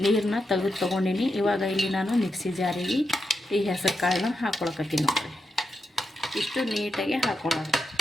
ನೀರನ್ನ ತೆಗೆದು ತೊಗೊಂಡಿನಿ. ಇವಾಗ ಇಲ್ಲಿ ನಾನು ಮಿಕ್ಸಿ ಜಾರಿಗೆ ಈ ಹೆಸರು ಕಾಳನ್ನ ಹಾಕ್ಕೊಳಕತ್ತೀನಿ ನೋಡ್ರಿ. ಇಷ್ಟು ನೀಟಾಗಿ ಹಾಕೊಳ್ಳೋದು.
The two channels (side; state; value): both; normal; correlation 0.85